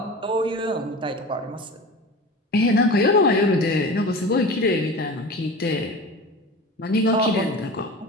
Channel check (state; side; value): normal; both; correlation 0.34